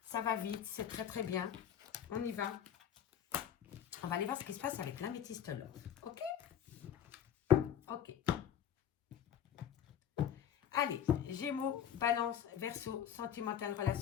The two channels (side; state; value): right; quieter; 9.4 dB